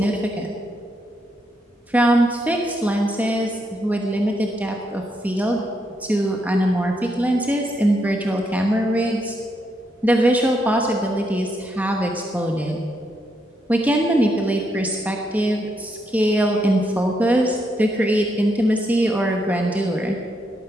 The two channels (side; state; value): both; normal; correlation 0.78